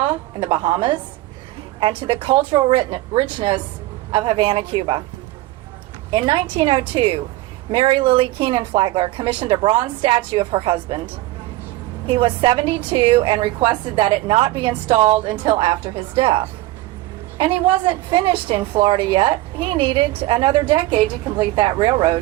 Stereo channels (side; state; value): left; quieter; 17.2 dB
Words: in the Bahamas, and to the cultural richness of Havana, Cuba. In 1902, Mary Lily Keenan Flagler commissioned a bronze statue of her husband. He was 72 and requested that it not be installed until after his death. And he wasn't finished in Florida yet. He needed another decade to complete that